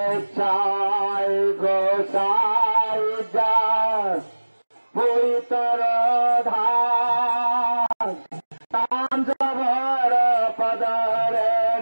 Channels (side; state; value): both; inverted; correlation -1.00